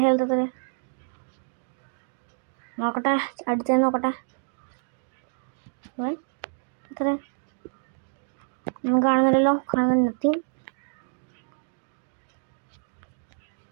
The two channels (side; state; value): left; silent; digital silence